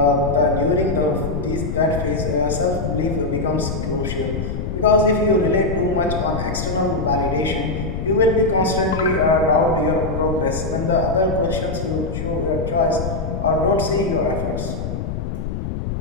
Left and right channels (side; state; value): left; noise; rumble, 4 dB below the sound